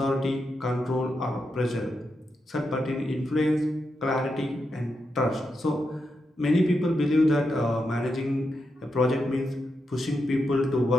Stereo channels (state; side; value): normal; both; correlation 0.85